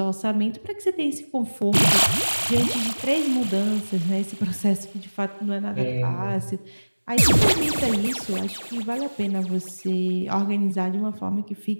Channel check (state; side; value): inverted; both; correlation -1.00